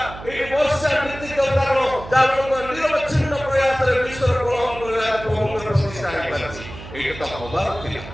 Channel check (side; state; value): right; noise; hum, 14 dB below the sound